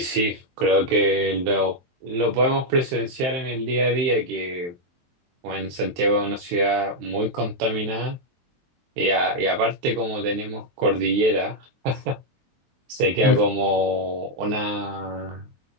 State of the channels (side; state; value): left; late; 23 ms